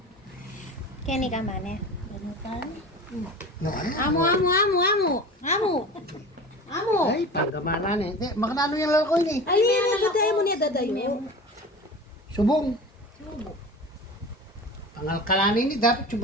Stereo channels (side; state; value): both; normal; correlation 0.35